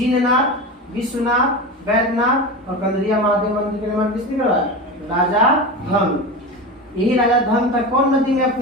विश्वनाथ, वैद्यनाथ और कंदरिया महादेव मंदिर का निर्माण किसने करवाया? राजा धंग। यही राजा धंग था कौन नदी में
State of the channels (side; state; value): both; normal; correlation 0.25